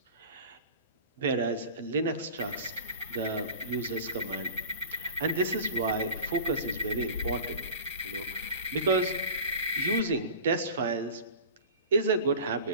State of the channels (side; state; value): both; inverted; correlation -0.38